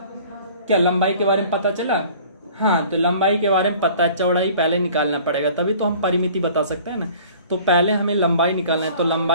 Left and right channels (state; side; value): inverted; both; correlation -0.49